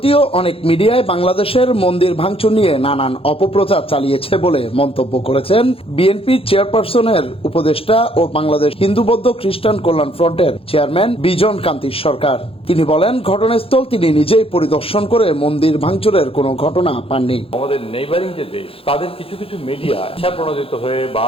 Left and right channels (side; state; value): right; late; 0.27 ms